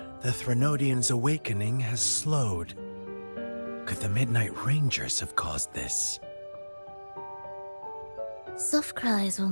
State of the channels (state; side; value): inverted; both; correlation -1.00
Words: The Threnodian's awakening has slowed. Could the Midnight Rangers have caused this? Soft cries will